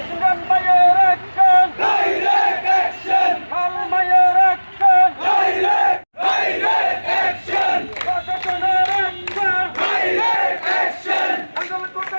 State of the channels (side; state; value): both; inverted; correlation -1.00